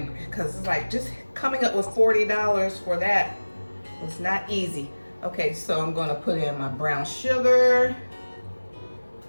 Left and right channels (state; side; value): inverted; both; correlation -1.00